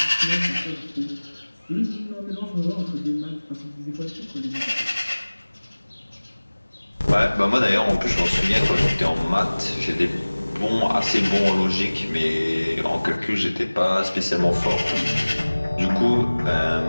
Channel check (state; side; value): inverted; both; correlation -1.00